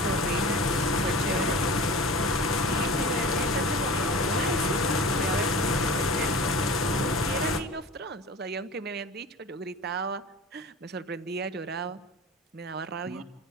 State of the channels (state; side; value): normal; both; correlation 0.37